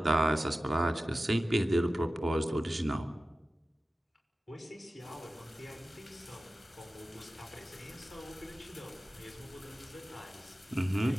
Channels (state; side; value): normal; both; correlation 0.95